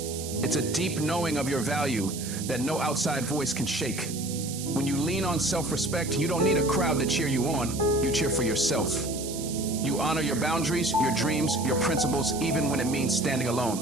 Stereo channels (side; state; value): right; noise; hiss, 9 dB below the sound